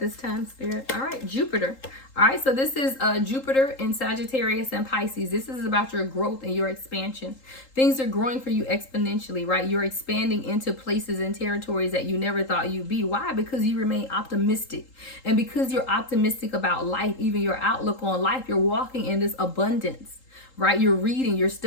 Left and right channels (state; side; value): late; right; 3.8 ms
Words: time, Spirit? All right, Jupiter. All right, so this is Jupiter in Sagittarius and Pisces. This is about your growth and your expansion. Things are growing for you exponentially, right? You're expanding into places and territories that you never thought you'd be. Why? Because you remain optimistic. And because you're optimistic about life, even your outlook on life, you're walking in this abundance, right? You're reading, you're